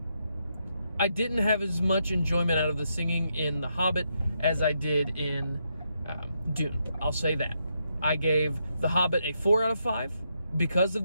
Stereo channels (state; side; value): inverted; both; correlation -0.80